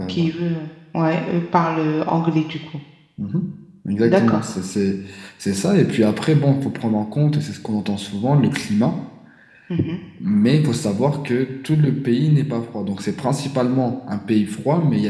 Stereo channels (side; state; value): both; identical; correlation 1.00